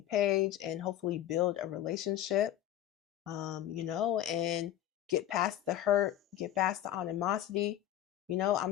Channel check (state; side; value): quieter; right; 12.5 dB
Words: page and hopefully build a relationship, and get past the hurt, get past the animosity.